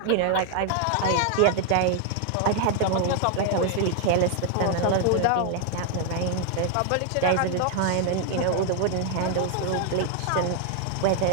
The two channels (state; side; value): different; both; correlation 0.00